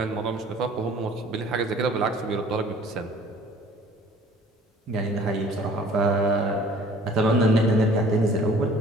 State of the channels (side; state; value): both; normal; correlation 0.51